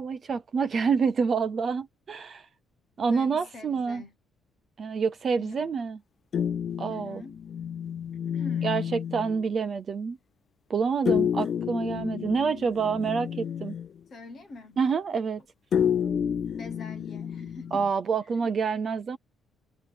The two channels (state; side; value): normal; both; correlation 0.76